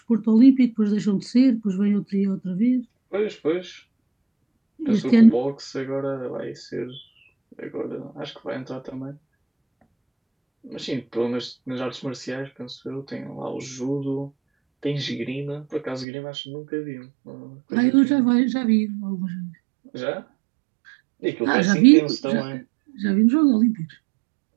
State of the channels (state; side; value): drops out; left; at 16.1 s